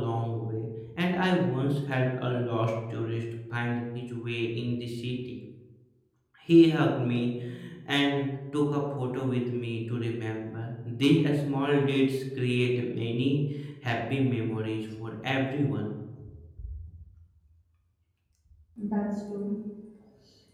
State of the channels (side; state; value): both; identical; correlation 1.00